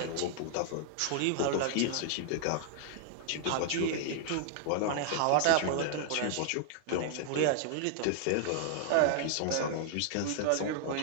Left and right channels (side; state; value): both; different; correlation 0.00